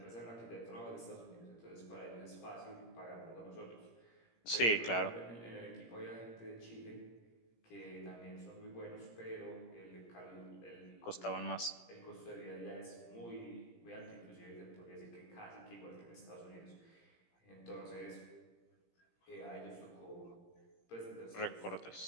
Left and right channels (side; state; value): right; late; 17 ms